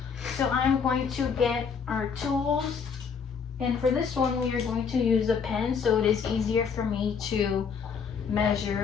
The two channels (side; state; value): right; quieter; 6.2 dB